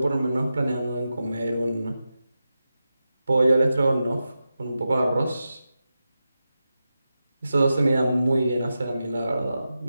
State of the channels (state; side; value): inverted; both; correlation -0.91